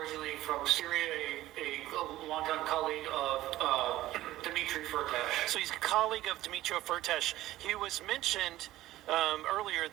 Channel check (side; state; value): left; quieter; 15.5 dB